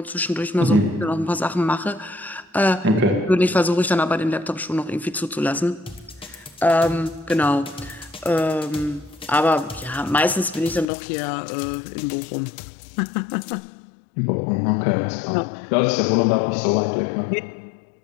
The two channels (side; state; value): right; drops out; at 10.9 s